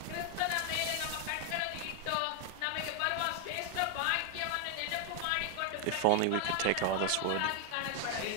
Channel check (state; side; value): different; both; correlation 0.00